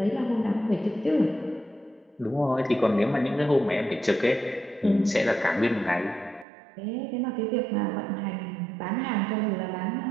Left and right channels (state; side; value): drops out; left; at 6.5 s